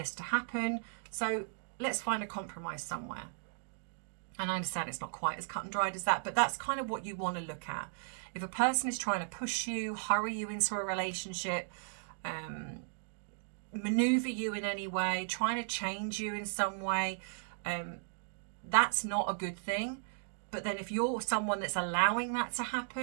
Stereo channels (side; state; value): left; silent; digital silence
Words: to happen. So let's find a compromise somewhere. And I understand it's not quite as cut and dried as that, but that's kind of what you want to look at. If a person is trying to push you, hurry you into a relationship, maneuver you in any way, trying to change you in some way, that's not a good thing. But then if you're someone that's allowing that to